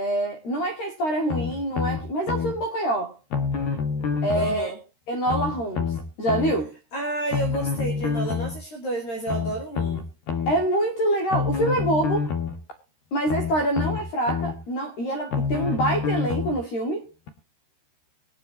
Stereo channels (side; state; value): right; late; 13 ms